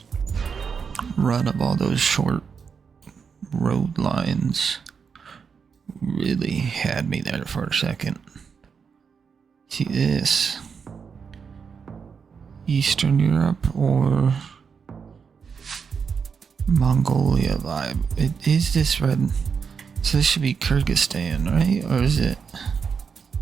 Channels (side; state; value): left; quieter; 6.1 dB